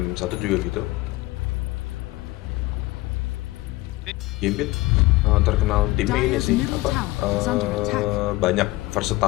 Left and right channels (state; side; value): quieter; right; 20.0 dB